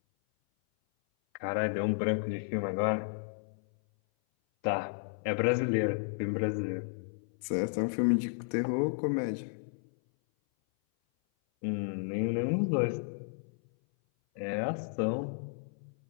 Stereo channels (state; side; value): silent; right; 56 dB below the other